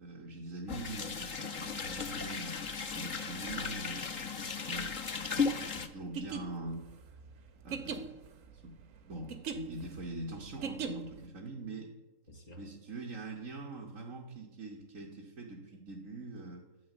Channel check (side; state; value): left; late; 3.8 ms